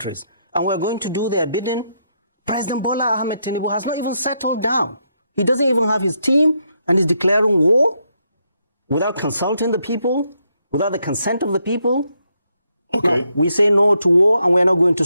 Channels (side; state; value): both; inverted; correlation -0.78